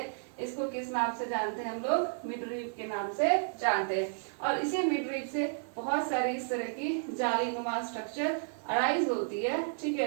इसको किस नाम से जानते हैं हम लोग? मिडरीप के नाम से जानते हैं। और इसी मिडरीप से बहुत सारी इस तरह की जालीनुमा स्ट्रक्चर अराइज होती है। ठीक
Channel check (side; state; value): left; silent; 56 dB below the other